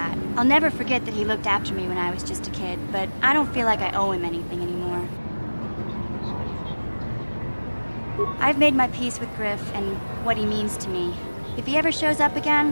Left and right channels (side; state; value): both; inverted; correlation -1.00